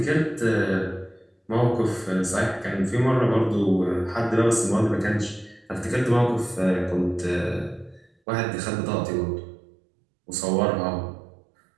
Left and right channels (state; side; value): drops out; left; at 8.1 s